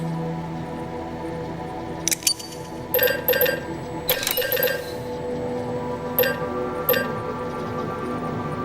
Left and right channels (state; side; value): identical; both; correlation 1.00